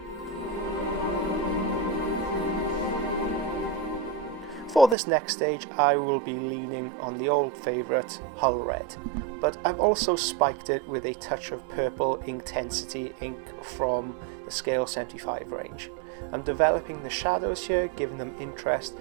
For this next stage I will be leaning on the old favourite Hull Red, but I've also spiked it with a touch of purple Intensity ink from the Scale 75 range. I'm developing the shadows here, giving them interest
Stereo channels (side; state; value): left; drops out; at 5.0 s